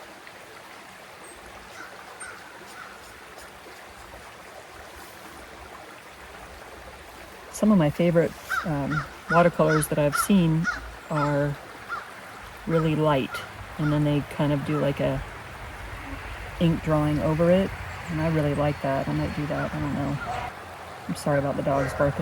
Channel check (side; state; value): both; identical; correlation 1.00